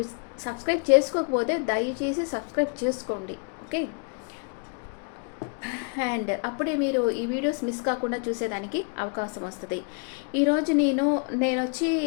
సబ్స్క్రైబ్ చేసుకోకపోతే దయచేసి సబ్స్క్రైబ్ చేసుకోండి, ఓకే? అండ్ అప్పుడే మీరు ఈ వీడియోస్ మిస్ కాకుండా చూసేదానికి అవకాశం వస్తుంది. ఈరోజు నేను వచ్చి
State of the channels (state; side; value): quieter; right; 37.9 dB